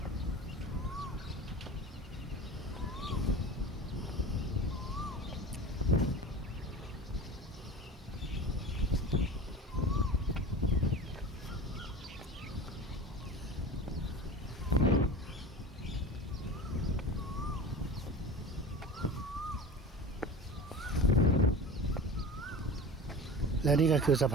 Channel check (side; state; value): both; normal; correlation 0.34